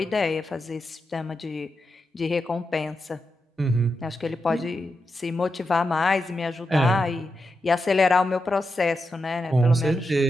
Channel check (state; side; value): normal; both; correlation 0.87